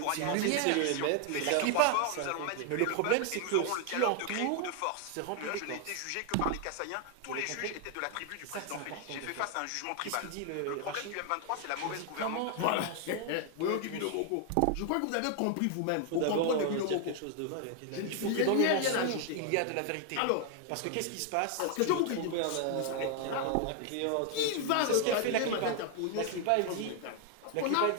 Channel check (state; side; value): different; both; correlation 0.00